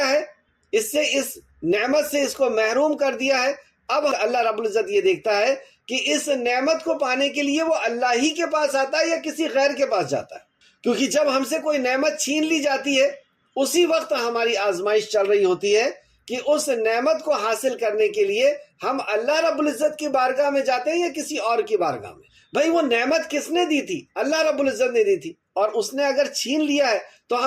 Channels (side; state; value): both; identical; correlation 1.00